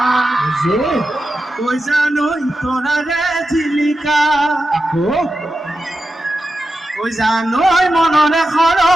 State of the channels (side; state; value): both; normal; correlation 0.90